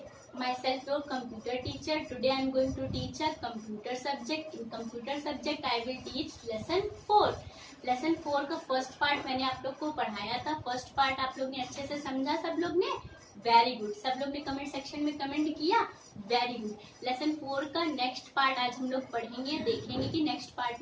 Myself, your computer teacher. Today I am going to teach a computer subject. In computer subject, I will teach lesson 4. Lesson 4 का first part मैंने आप लोग को पढ़ाया था. First part आप लोग ने अच्छे से समझा सब लोग ने? Very good. सब लोग ने कमेंट सेक्शन में कमेंट किया. Very good. लेसन 4 का नेक्स्ट पार्ट आज हम लोग पढ़ेंगे. देखेंगे कि नेक्स्ट पार्ट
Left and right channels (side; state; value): both; identical; correlation 1.00